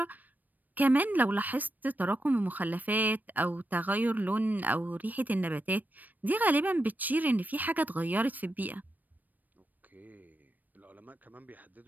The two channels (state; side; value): late; left; 0.086 ms